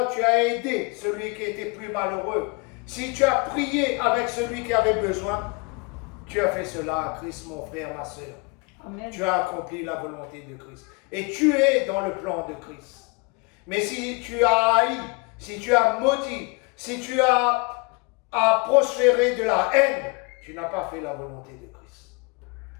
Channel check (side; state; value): right; quieter; 29.6 dB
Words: tu as aidé celui qui était plus malheureux, si tu as prié avec celui qui avait besoin, tu as fait cela à Christ, mon frère, ma sœur. Amen. Tu as accompli la volonté de Christ. Et tu es dans le plan de Christ. Mais si tu as haï, si tu as maudit, si tu as prospéré de la haine, tu n'as pas fait la volonté de Christ.